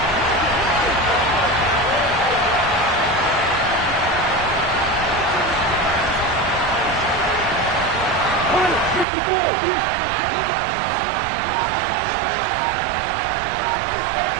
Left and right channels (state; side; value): drops out; left; at 9.1 s